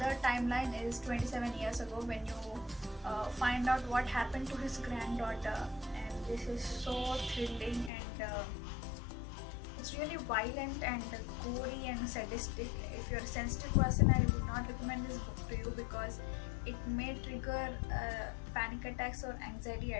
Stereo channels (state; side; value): drops out; right; at 7.9 s